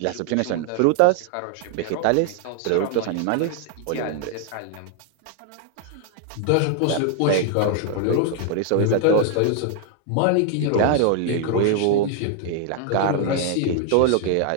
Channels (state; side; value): different; both; correlation 0.00